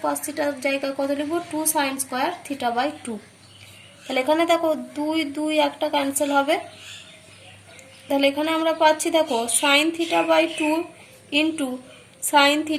কস থিটার জায়গায় কত লিখব, 2 সাইন স্কয়ার θ/2। তাহলে এখানে দেখো 2 2 একটা ক্যান্সেল হবে, তাহলে এখানে আমরা পাচ্ছি দেখো sine θ/2 into sine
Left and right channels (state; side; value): identical; both; correlation 1.00